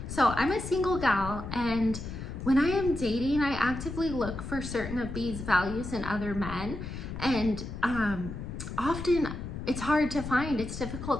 So I'm a single gal, and when I am dating, I actively look for certain of these values in other men, and often it's hard to find, it's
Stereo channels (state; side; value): noise; left; rumble, 8 dB below the sound